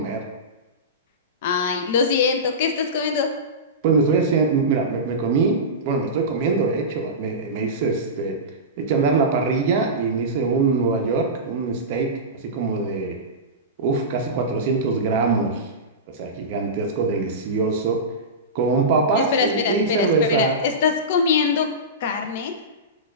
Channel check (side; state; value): both; normal; correlation -0.19